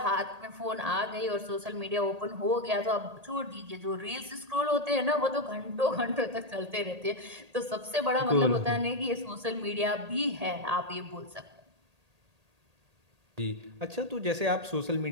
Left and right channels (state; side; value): late; left; 1.8 ms